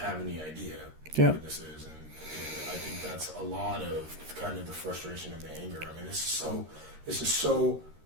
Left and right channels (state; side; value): late; left; 13 ms